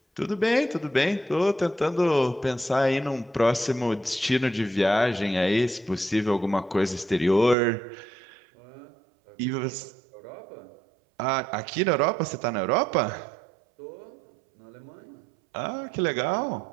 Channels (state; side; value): drops out; left; at 7.6 s